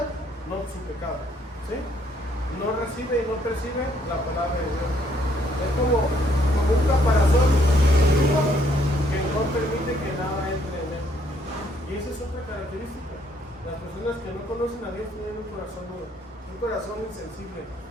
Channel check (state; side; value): normal; both; correlation 0.68